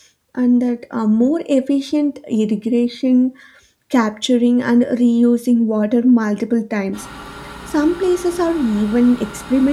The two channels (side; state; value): both; identical; correlation 1.00